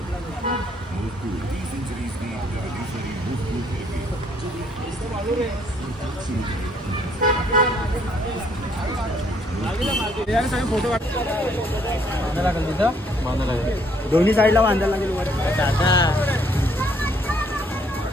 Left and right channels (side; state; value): both; normal; correlation 0.66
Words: फोटो दोन्ही साईडला बांधायला लागेल